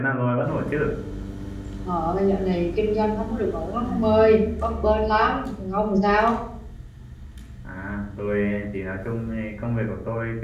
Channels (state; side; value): identical; both; correlation 1.00